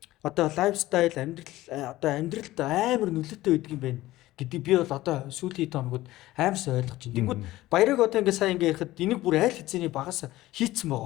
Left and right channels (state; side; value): quieter; right; 16.8 dB